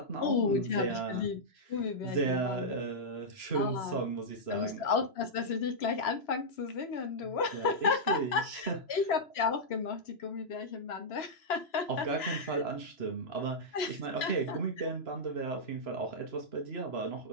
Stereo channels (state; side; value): late; right; 3.0 ms